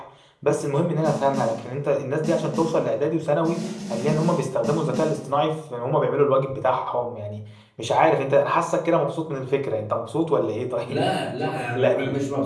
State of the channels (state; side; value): identical; both; correlation 1.00